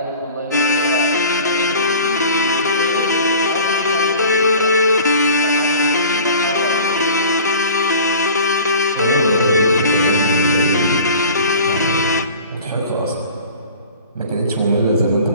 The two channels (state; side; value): inverted; both; correlation -0.43